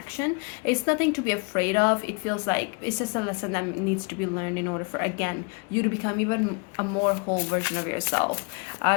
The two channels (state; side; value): quieter; right; 34.0 dB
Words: It's nothing to be afraid of. It feels like it's just a lesson that needs to be learned in order for, again, you to become even a more whole version of yourself.